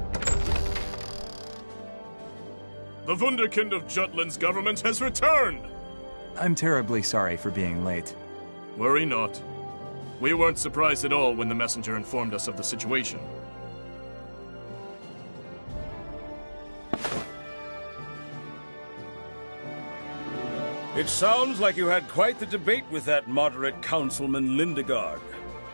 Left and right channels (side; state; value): both; inverted; correlation -1.00